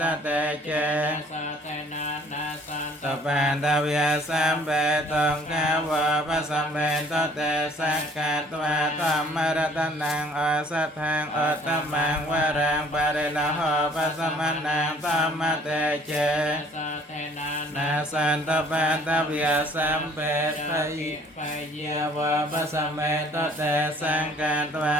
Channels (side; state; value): both; normal; correlation 0.56